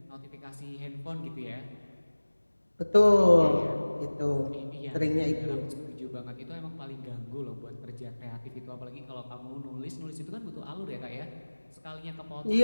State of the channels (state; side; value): inverted; both; correlation -1.00